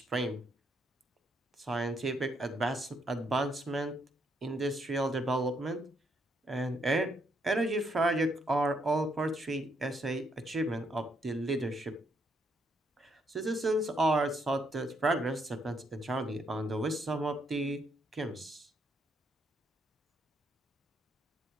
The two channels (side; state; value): both; normal; correlation 0.74